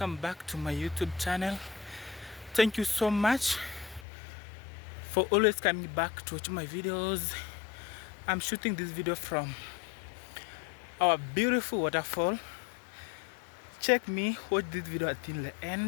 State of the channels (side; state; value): right; drops out; at 4.0 s